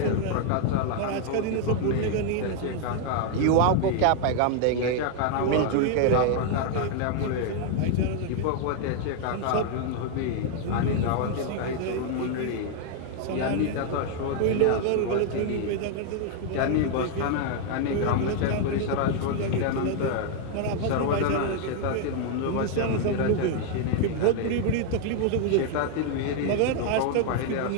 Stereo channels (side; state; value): both; different; correlation 0.00